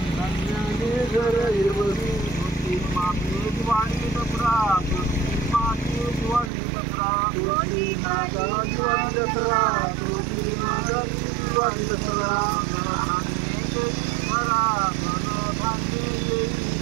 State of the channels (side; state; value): left; drops out; at 6.5 s